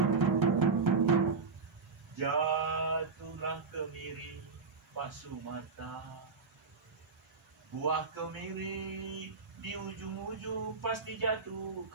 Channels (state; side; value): quieter; left; 4.6 dB